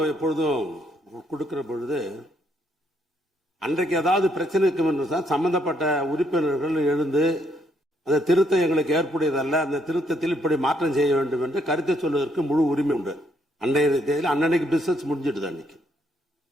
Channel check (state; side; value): normal; both; correlation 0.72